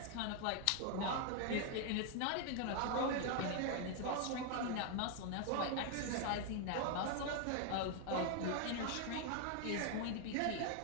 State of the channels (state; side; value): different; both; correlation 0.00